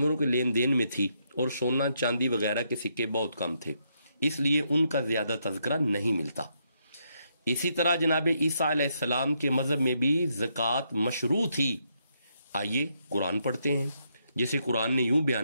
کے لین دین میں تھی اور سونا چاندی وغیرہ کے سکے بہت کم تھے، اس لیے ان کا زیادہ تذکرہ نہیں ملتا. اسی طرح جناب عیسیٰ علیہ السلام کے مذہب میں بھی زکوٰۃ مشروع تھی. آئیے قرآن پڑھتے ہیں جیسے قرآن نے یوں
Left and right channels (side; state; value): both; inverted; correlation -0.77